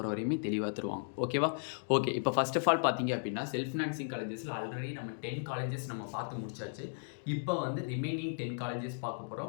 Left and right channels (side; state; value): right; silent; digital silence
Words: வரையுமே தெளிவாக தருவாங்க. ஓகேவா? ஓகே, இப்போ ஃபர்ஸ்ட் ஆஃப் ஆல் பார்த்தீங்க அப்படின்னா, செல்ஃப் ஃபினான்சிங் காலேஜஸில் ஆல்ரெடி நம்ம 10 காலேஜஸ் நம்ம பார்த்து முடிச்சாச்சு. இப்போ வந்து ரிமைனிங் 10 காலேஜஸ் பார்க்க